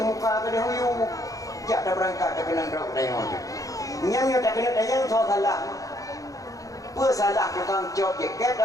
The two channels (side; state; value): right; late; 0.17 ms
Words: kena huyu jak dah berangkat dah kena drop dayang nyamnya tak kena dayang so salah apa salah tukang cop jaket